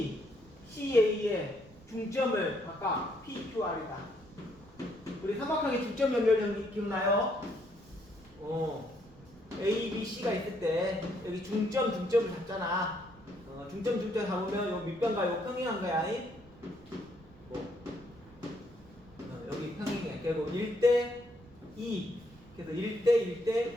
C, A의 중점을 각각 P, Q, R이다. 우리 삼각형의 중점 연결형 기억나요? A, B, C가 있을 때 여기 중점을 잡잖아. 중점 잡으면 요 밑변과 요 평행한 거야. 여기 평행해. 그리고 1대 2. 그래서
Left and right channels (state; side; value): noise; right; rumble, 23 dB below the sound